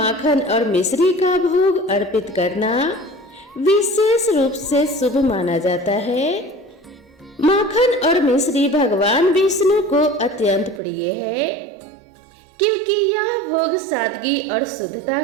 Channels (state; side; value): drops out; left; at 10.8 s